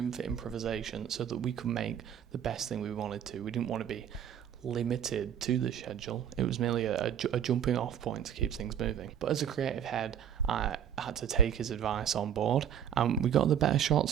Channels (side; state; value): left; quieter; 9.2 dB